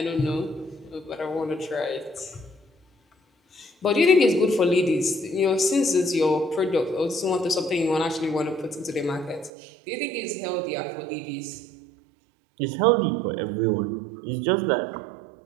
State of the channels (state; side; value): drops out; left; at 9.5 s